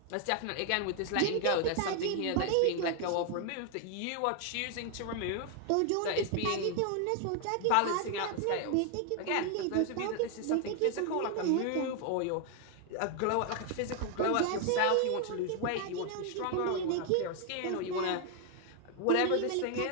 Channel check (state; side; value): different; both; correlation 0.01